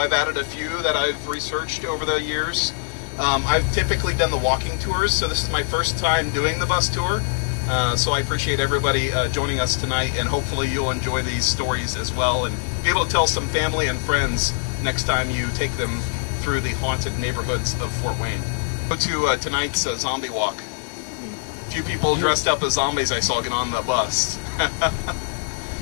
added a few that I've researched over the years. I've typically done the walking tours, so this is my first time doing the bus tour. So I appreciate everybody joining us tonight, and hopefully you'll enjoy these stories as well and be able to tell some family and friends next time you take them through the haunted neighborhoods of Fort Wayne. Go to tonight's zombie walk. A few people dressed up as zombies I saw get on the bus.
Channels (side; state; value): right; silent; 64 dB below the other